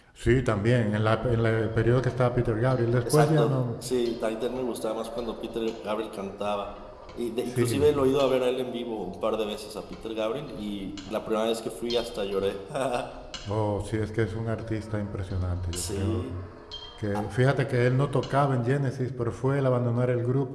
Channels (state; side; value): identical; both; correlation 1.00